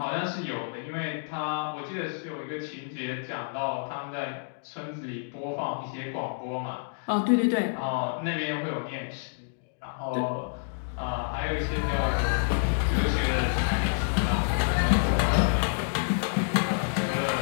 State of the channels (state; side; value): silent; right; digital silence